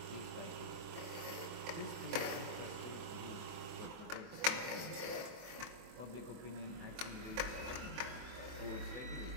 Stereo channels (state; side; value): late; left; 24 ms